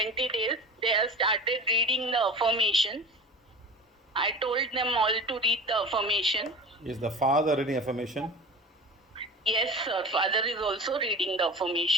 days. They have started reading the affirmation. I told them all to read the affirmation. Is the father reading affirmation? Yes, sir. Father is also reading the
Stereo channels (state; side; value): normal; both; correlation 0.35